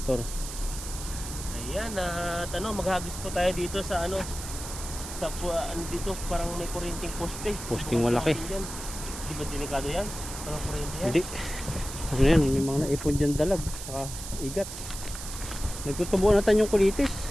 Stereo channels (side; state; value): right; noise; hiss, 9 dB below the sound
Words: Tor. Ayan, at ano, maghagis po tayo dito sa ano, sa ano dito, parang may kuryenteng poste. Posting malaki. Yan. Di ba delikado yan? Parang kuryente yan. Hindi. Ano yan, may mga naipon dyan dalag. Saka igat. Nagtutubuan natin yung kulitis.